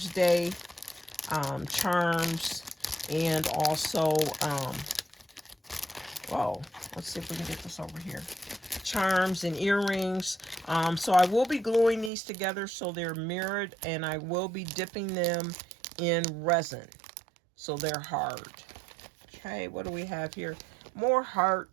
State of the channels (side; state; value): left; drops out; at 12.1 s